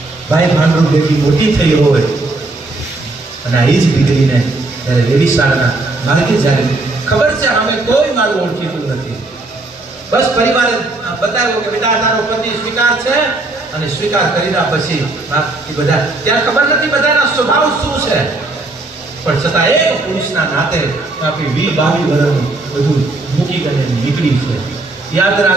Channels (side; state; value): left; quieter; 3.0 dB